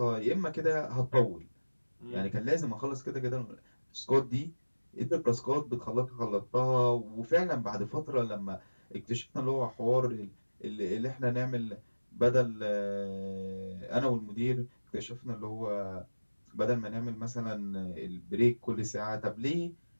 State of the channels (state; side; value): inverted; both; correlation -1.00